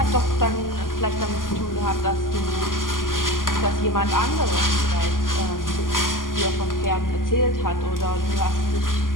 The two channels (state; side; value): late; right; 0.90 ms